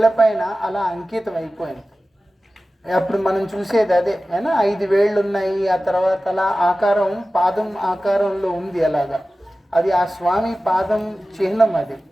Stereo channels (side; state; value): both; normal; correlation 0.95